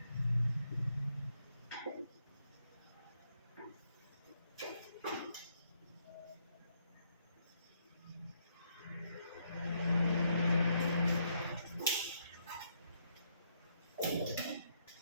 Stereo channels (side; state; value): both; inverted; correlation -0.75